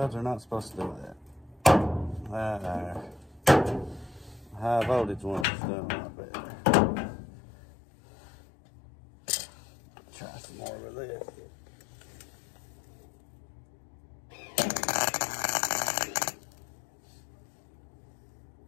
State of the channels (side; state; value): right; drops out; at 5.5 s